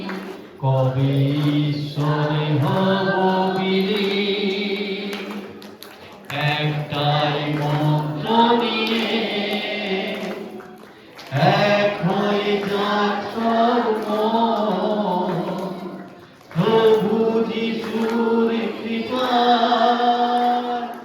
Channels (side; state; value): both; identical; correlation 1.00